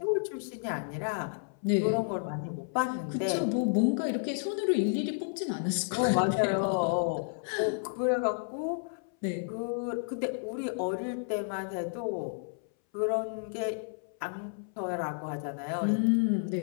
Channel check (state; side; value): silent; right; 57 dB below the other